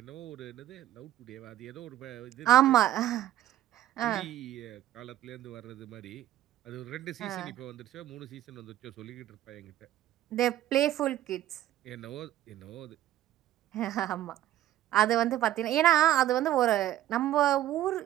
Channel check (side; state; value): left; quieter; 13.4 dB